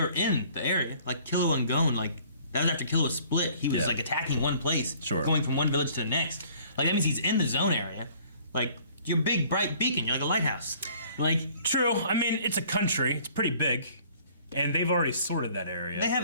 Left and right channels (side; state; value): both; inverted; correlation -0.55